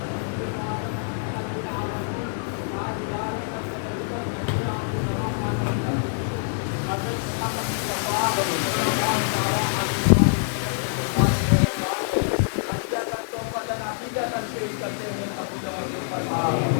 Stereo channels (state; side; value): silent; right; digital silence